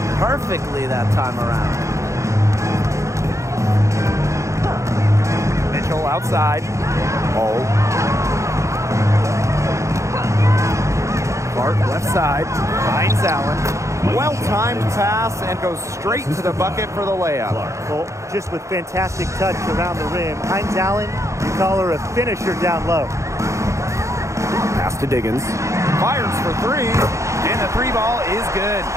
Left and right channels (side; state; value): left; late; 0.15 ms